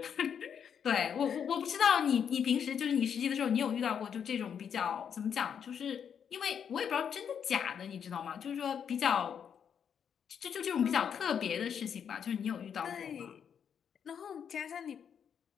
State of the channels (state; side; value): quieter; right; 7.8 dB